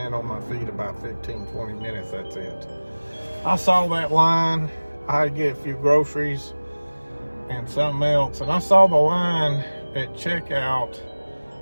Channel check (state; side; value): inverted; both; correlation -1.00